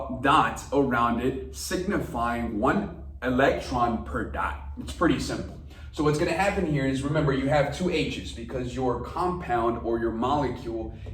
dots around it, signifying 1 electron per dot. It's pretty simple. So what's going to happen here is, remember, you have 2 H's because your compound or your molecule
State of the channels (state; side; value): identical; both; correlation 1.00